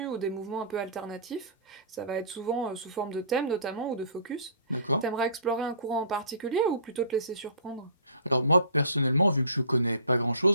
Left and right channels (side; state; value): both; inverted; correlation -0.45